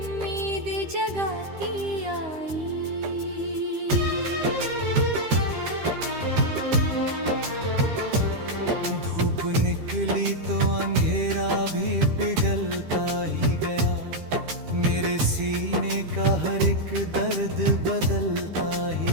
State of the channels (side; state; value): left; late; 13 ms